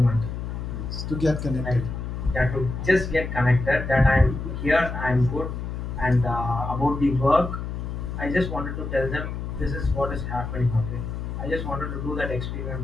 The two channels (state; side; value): noise; left; hum, 5 dB below the sound